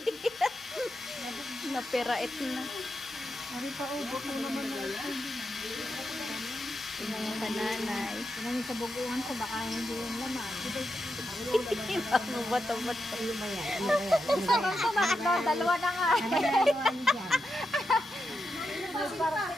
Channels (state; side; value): normal; both; correlation 0.87